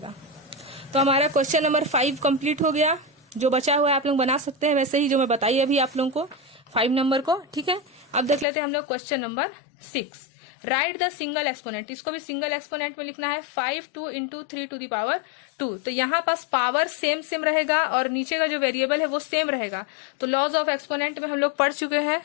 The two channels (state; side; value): drops out; right; at 8.5 s